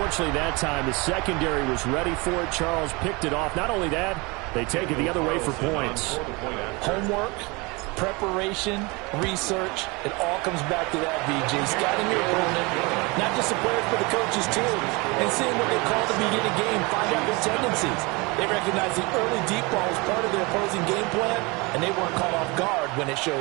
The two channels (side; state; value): left; quieter; 26.6 dB